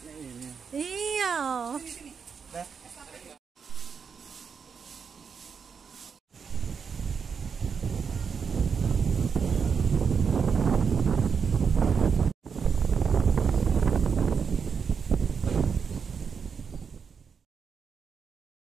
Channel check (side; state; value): left; quieter; 6.2 dB